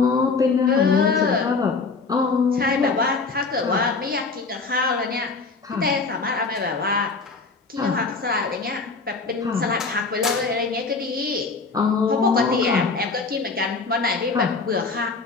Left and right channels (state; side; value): quieter; right; 4.3 dB